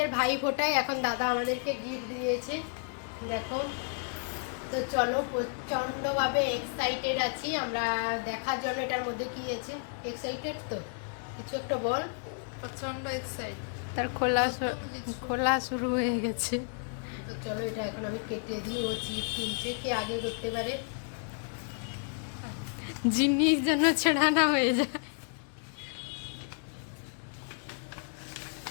ভাই ফোটায় এখন দাদা আমাদেরকে গিফট দিয়েছে, দেখো। তো চলো, প্রচন্ডভাবে এক্সাইটেড আছি আমরা দেখার জন্য এটার মধ্যে কি আছে। এক্সাইটেড তো, কিছু একটা বল। প্রচন্ড এক্সাইটেড। তার খোলা শুরু হয়ে গেছে। তো চলো, এটা এখন আমি কেটে দিই। ও চিপ তুলছে, কে আগে করতে পারে। জিনিস যেন ছেড়ানা হয়ে যায়।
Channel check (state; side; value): silent; right; 57 dB below the other